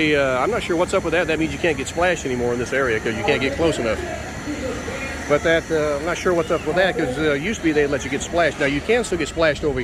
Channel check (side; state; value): both; identical; correlation 1.00